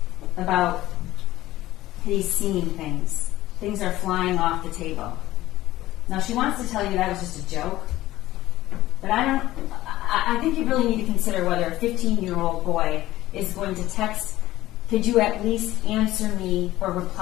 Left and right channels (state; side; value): quieter; right; 15.9 dB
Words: about he's seeing things. Things are flying off the table. Now she wants to tell you that was just a joke, but I think you really need to consider whether a 15-year-old boy is going to text, could you at least answer me or